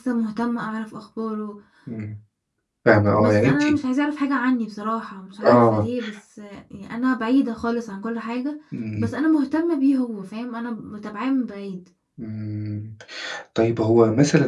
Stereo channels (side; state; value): both; identical; correlation 1.00